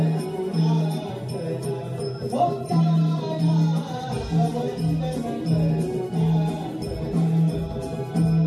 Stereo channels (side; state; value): both; identical; correlation 1.00